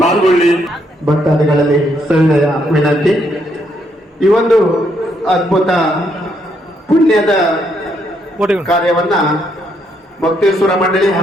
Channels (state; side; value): normal; both; correlation 0.74